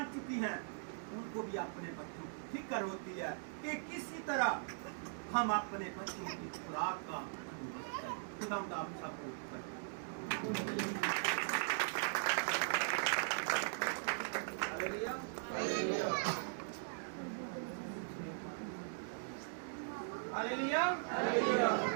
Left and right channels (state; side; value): silent; left; digital silence